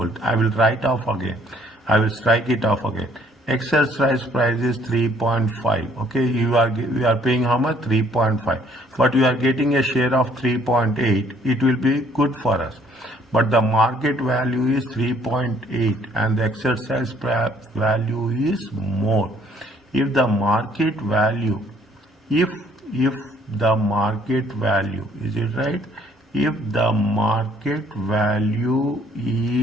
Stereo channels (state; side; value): normal; both; correlation 0.62